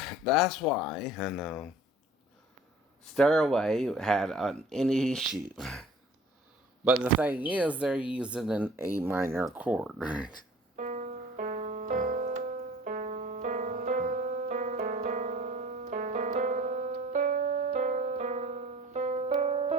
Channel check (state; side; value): normal; both; correlation 0.48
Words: That's why, I know, Stairway had an issue. But the thing is, they're using an A minor chord.